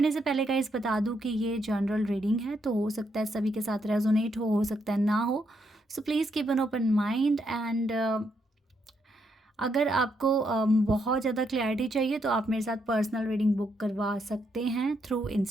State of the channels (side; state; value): both; normal; correlation 0.77